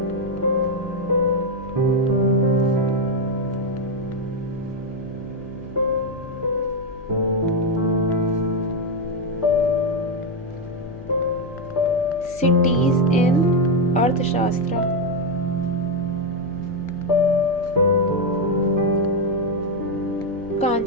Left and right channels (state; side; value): noise; left; hum, 18 dB below the sound